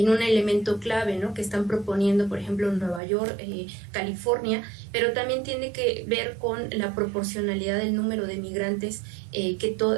un elemento clave, ¿no? Que están proponiendo, por ejemplo, en Nueva York, California, pero también tiene que ver con la proporcionalidad del número de migrantes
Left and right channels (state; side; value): drops out; left; at 3.0 s